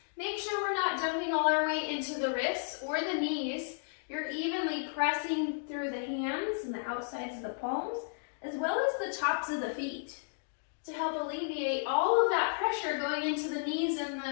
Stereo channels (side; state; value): right; silent; digital silence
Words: Make sure we're not dumping all our weight into the wrists or the knees. You're evenly pressing through the hands and the outsides of the palms, as well as the tops of the feet, to help alleviate all of that pressure going into the knees